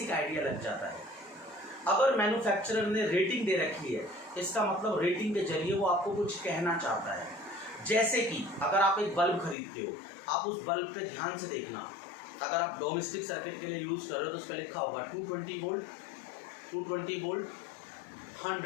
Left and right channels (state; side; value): drops out; right; at 9.6 s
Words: आइडिया लग जाता है. अगर मैन्युफैक्चरर ने रेटिंग दे रखी है, इसका मतलब रेटिंग के जरिए वो आपको कुछ कहना चाहता है. जैसे कि अगर आप एक बल्ब खरीदते हो, आप उस बल्ब पे ध्यान से देखना. अगर आप डोमेस्टिक सर्किट के लिए यूज़ कर रहे हो तो उस पर लिखा होगा 220 volt, 220 volt